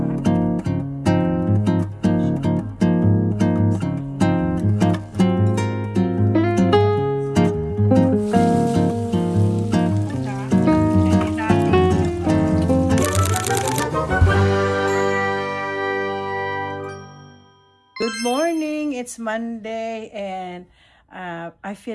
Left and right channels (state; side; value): identical; both; correlation 1.00